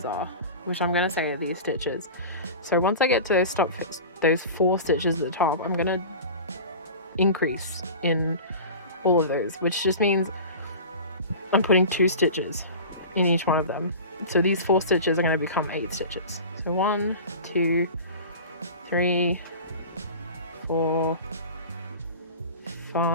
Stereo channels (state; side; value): inverted; both; correlation -0.34